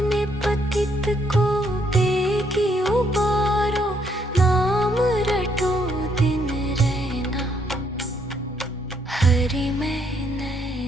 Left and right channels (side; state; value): both; normal; correlation 0.71